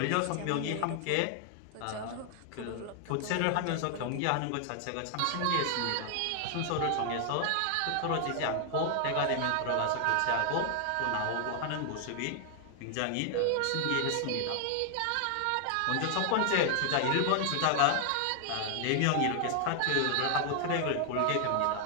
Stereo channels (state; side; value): different; both; correlation 0.00